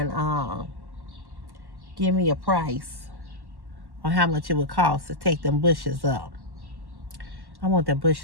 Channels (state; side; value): late; left; 1.1 ms